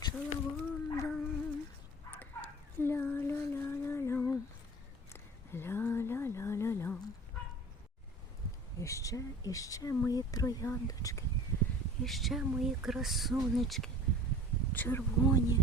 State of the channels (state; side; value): normal; both; correlation 0.44